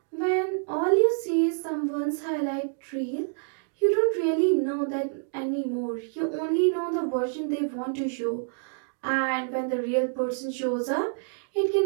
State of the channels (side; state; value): left; silent; digital silence